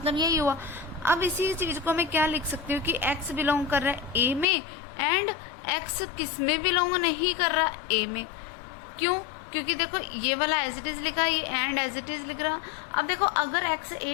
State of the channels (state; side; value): drops out; right; at 4.5 s